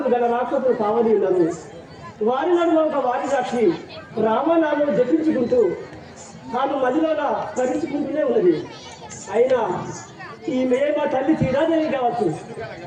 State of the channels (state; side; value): identical; both; correlation 1.00